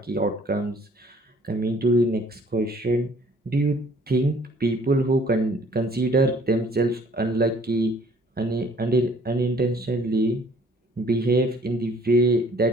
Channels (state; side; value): normal; both; correlation 0.57